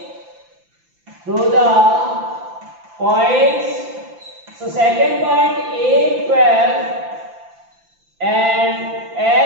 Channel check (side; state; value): left; late; 5.9 ms